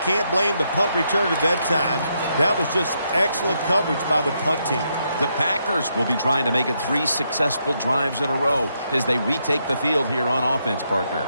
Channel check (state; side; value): inverted; both; correlation -0.79